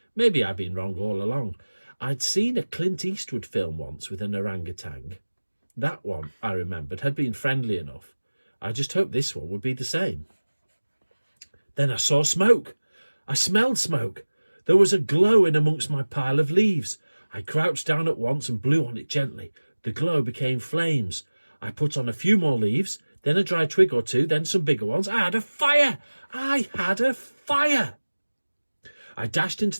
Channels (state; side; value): inverted; both; correlation -1.00